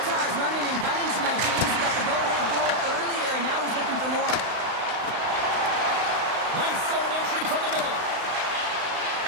running and gunning tonight, James. He got the go-ahead goal earlier, and now he's looking for more. Nice zone entry from the middle.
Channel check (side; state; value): left; late; 35 ms